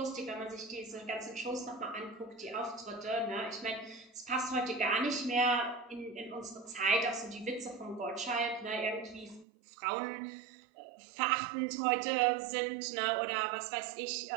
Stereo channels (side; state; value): left; drops out; at 9.5 s